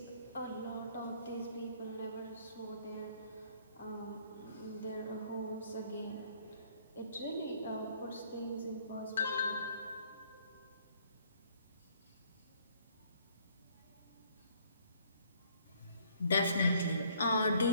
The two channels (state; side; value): inverted; both; correlation -0.62